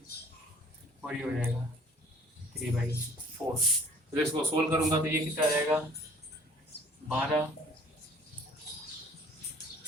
और ये हो जाएगा 3/4। तो इसको सोल्व करूंगा तो ये कितना आ जाएगा 12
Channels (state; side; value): normal; both; correlation 0.52